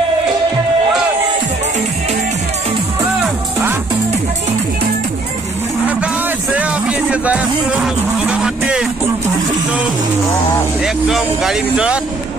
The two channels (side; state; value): left; quieter; 3.2 dB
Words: एकदम गाड़ी ভিতৰত